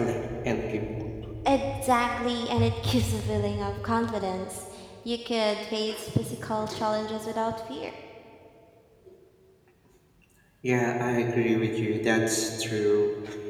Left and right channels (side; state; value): both; identical; correlation 1.00